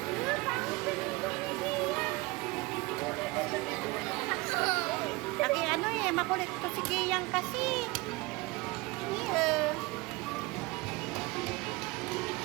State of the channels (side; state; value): left; quieter; 23.5 dB